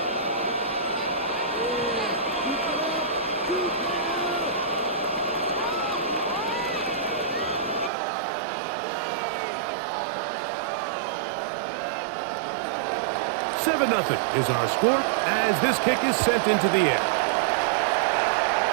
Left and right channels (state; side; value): drops out; left; at 7.9 s